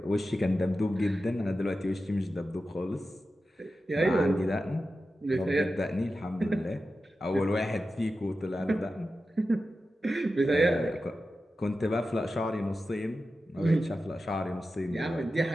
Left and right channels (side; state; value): both; normal; correlation 0.92